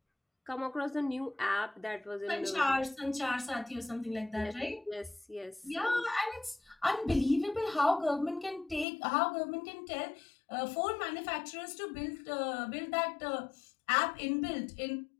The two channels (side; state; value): right; drops out; at 8.8 s